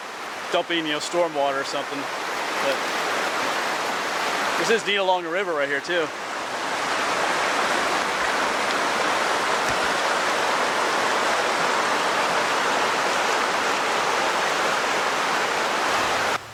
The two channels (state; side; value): identical; both; correlation 1.00